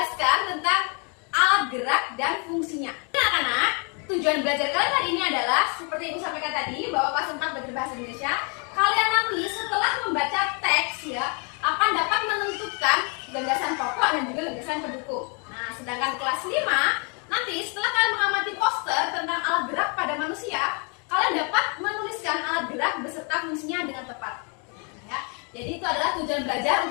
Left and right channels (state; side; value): quieter; right; 36.0 dB